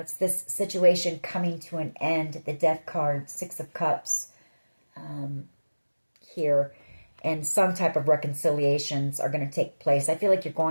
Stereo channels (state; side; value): inverted; both; correlation -1.00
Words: this situation coming to an end. The Death card, Six of Cups here. And some type of reconciliations are going to take place. I feel like you're